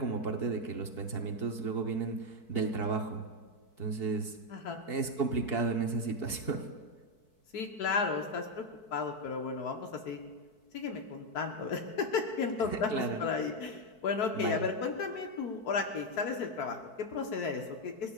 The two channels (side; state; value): right; late; 4.6 ms